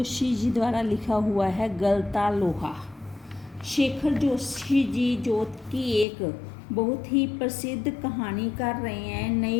जी द्वारा लिखा हुआ है गलता लोहा। शेखर जोशी जी जो कि एक बहुत ही प्रसिद्ध कहानीकार रहे हैं,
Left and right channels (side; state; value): right; drops out; at 6.1 s